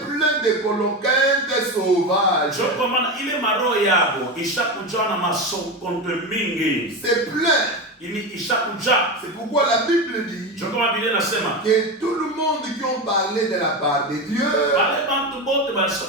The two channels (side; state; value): both; normal; correlation 0.19